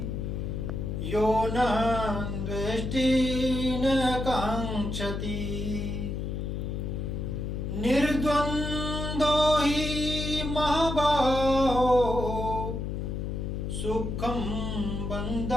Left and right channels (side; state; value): left; noise; hum, 3 dB below the sound